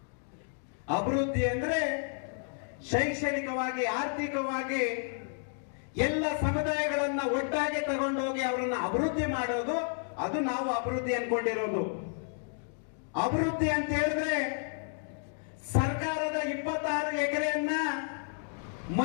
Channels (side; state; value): right; silent; 57 dB below the other